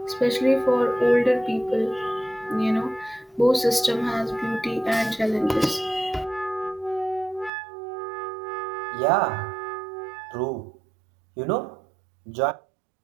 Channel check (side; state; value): left; drops out; at 7.5 s